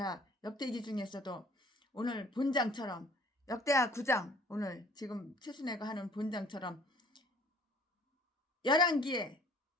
역대기 중에서도 오늘 본장처럼 역대하 9장 오늘 지금 최순애가 하는 본장처럼 11기에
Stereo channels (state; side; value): normal; both; correlation 0.54